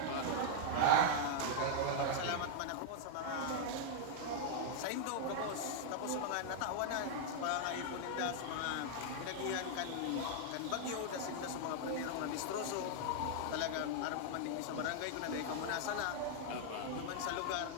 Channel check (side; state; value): both; different; correlation -0.01